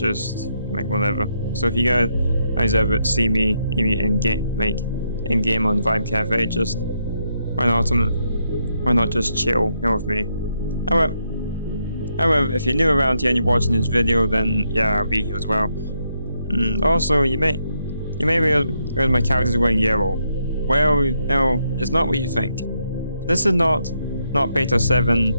like whatever. So if you guys ever see me in game on Vibe Cafe, just why not just chill here with me. However, if you're new around here and you're watching this video, then yeah, I'll be here as well. Also, you may realize my character's wearing yellow. Well, no, it's not what you think. This is not Beta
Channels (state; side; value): inverted; both; correlation -0.79